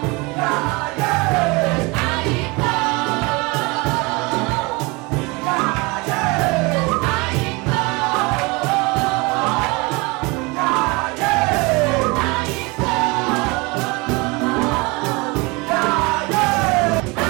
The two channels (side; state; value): left; quieter; 26.3 dB